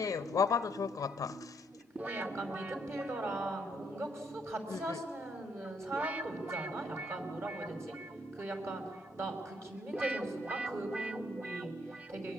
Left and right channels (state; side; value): normal; both; correlation 0.71